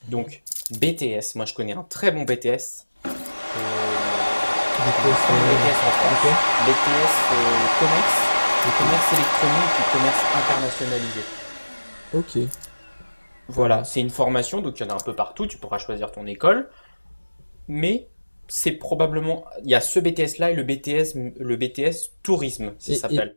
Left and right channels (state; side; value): inverted; both; correlation -1.00